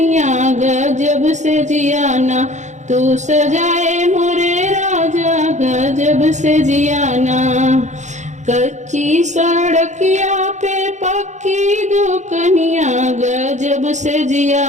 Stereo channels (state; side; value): late; left; 0.34 ms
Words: गजब से जियाना तू सजाए मोरे राजा गजब से जियाना। कच्ची सड़किया पे पक्की दुकनिया गजब से